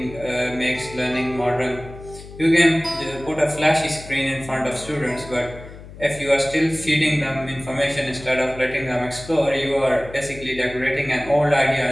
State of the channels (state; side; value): noise; left; hum, 16 dB below the sound